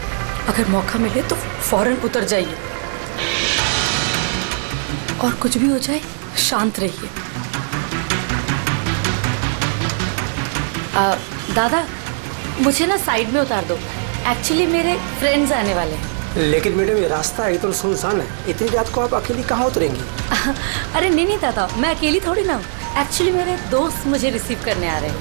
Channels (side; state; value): left; silent; digital silence